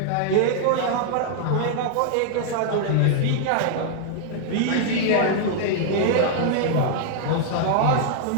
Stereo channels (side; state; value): both; different; correlation -0.01